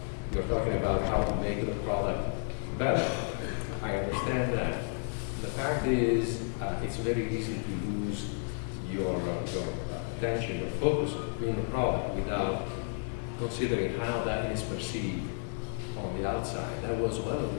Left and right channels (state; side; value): silent; right; 56 dB below the other